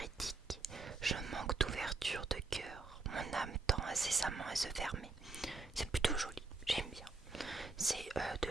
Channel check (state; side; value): quieter; left; 3.6 dB